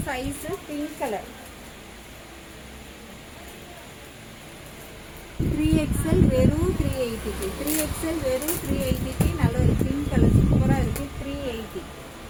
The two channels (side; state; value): both; identical; correlation 1.00